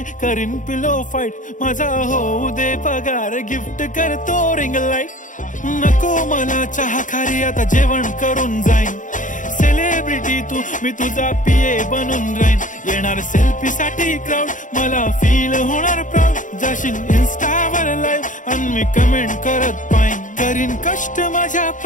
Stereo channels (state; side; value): late; right; 0.37 ms